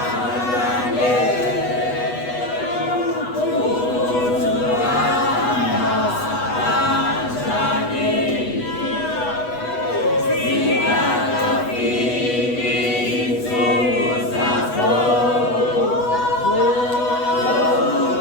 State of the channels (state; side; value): late; right; 8.1 ms